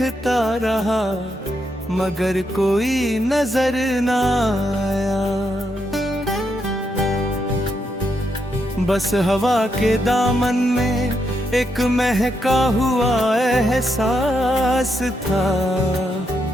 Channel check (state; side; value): normal; both; correlation 0.80